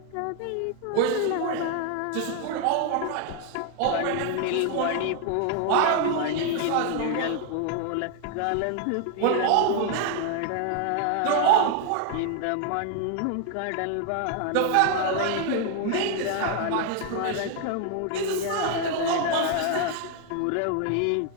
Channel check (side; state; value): both; different; correlation 0.00